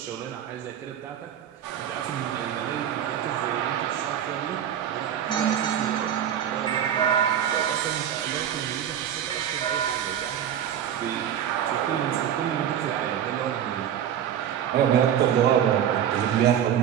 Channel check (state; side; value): quieter; left; 9.7 dB